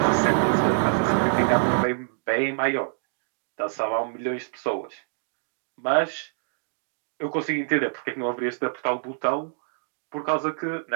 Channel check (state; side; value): silent; left; digital silence